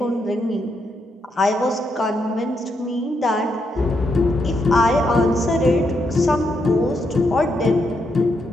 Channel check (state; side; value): normal; both; correlation 0.79